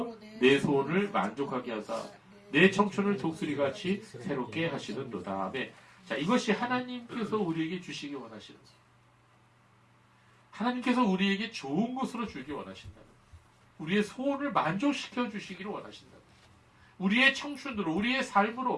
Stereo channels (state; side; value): identical; both; correlation 1.00